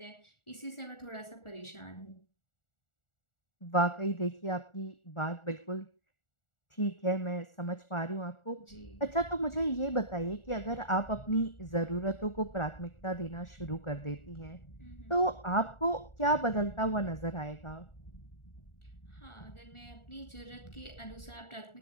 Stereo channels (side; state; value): right; late; 1.4 ms